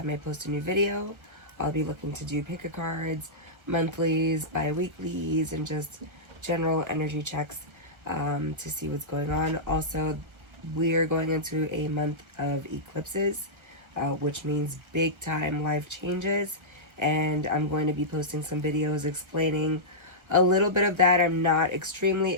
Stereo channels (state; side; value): late; left; 1.3 ms